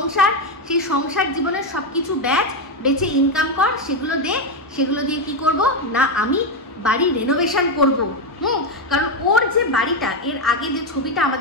সেই সংসার জীবনের সব কিছু ব্যাচ বেচে ইনকাম কর, সেগুলো দিয়ে কি করব না, আমি বাড়ি রেনোভেশন করব। কারণ ওর যে বাড়িটা, এর আগে যে ছবিটা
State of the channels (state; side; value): normal; both; correlation 0.07